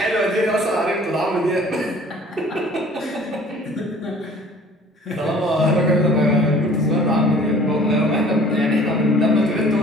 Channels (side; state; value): both; normal; correlation 0.50